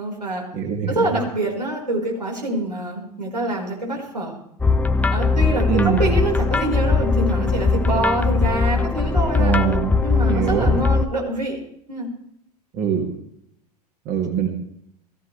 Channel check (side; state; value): both; normal; correlation 0.57